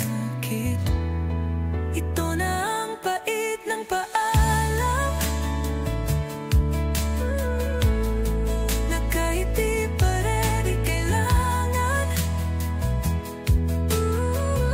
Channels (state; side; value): identical; both; correlation 1.00